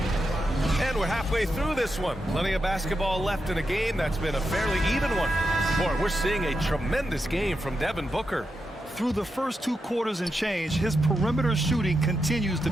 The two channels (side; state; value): both; normal; correlation 0.86